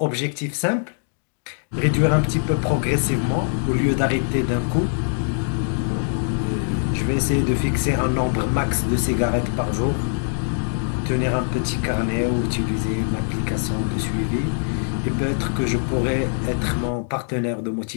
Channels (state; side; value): silent; right; digital silence